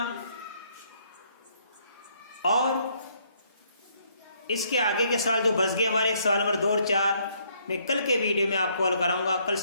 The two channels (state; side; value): inverted; both; correlation -0.68